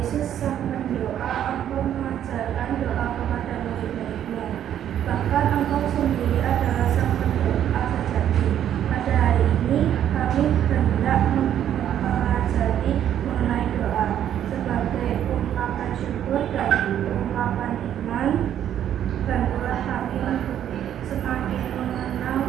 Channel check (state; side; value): quieter; left; 10.4 dB